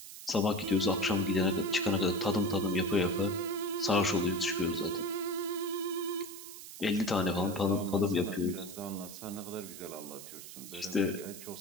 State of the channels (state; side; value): noise; right; hiss, 13 dB below the sound